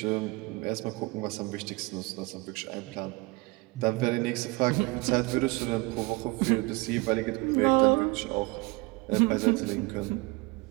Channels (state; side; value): quieter; left; 25.4 dB